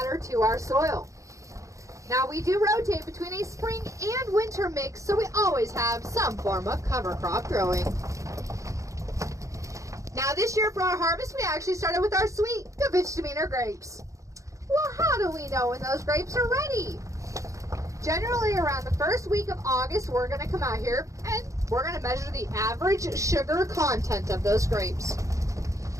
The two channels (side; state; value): left; late; 0.15 ms